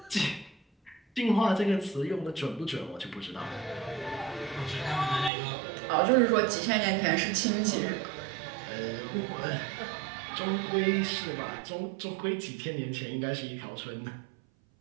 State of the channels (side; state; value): left; drops out; at 5.3 s